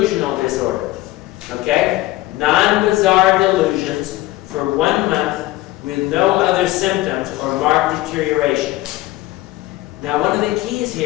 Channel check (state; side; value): quieter; right; 17.4 dB